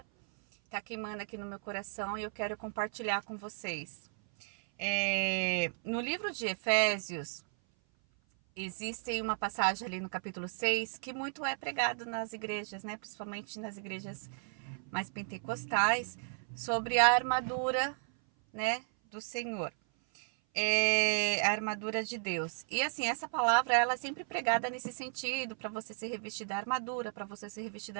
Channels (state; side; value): silent; left; 55 dB below the other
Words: tá queimando aqui no meu coração e eu quero compartilhar com vocês. No livro de Efésios, existe uma passagem ali no capítulo 6 que muito é pregado nas igrejas, né? Principalmente nas igrejas mais pentecostais, sobre a armadura, né, do Senhor. A armadura de Deus. E assim, essa palavra ela é sempre pregada nesse sentido, para você se revestir da armadura, para você se revestir da